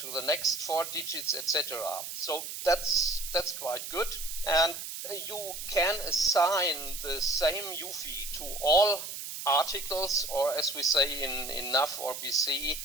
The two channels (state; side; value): noise; right; hiss, 8 dB below the sound